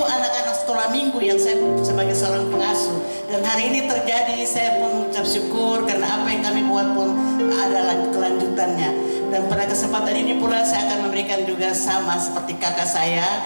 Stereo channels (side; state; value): both; inverted; correlation -1.00